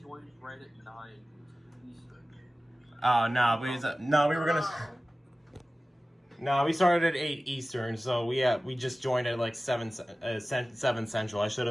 joined right at 9 Eastern. Oh no, we were gonna. No, we started at 8 Eastern, so we just joined at like 7 Central. I should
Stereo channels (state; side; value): normal; both; correlation 0.96